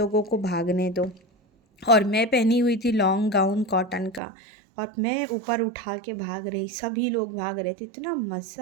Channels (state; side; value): drops out; left; at 4.2 s